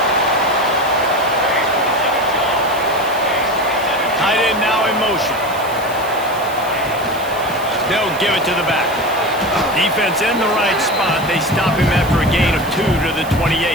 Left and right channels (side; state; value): right; noise; hiss, 17 dB below the sound